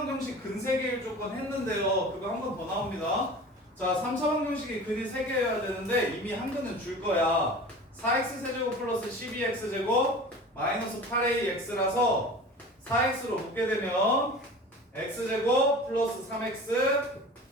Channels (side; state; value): both; normal; correlation 0.38